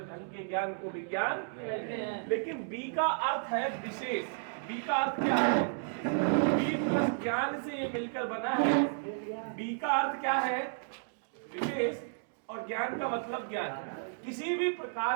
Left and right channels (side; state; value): left; silent; digital silence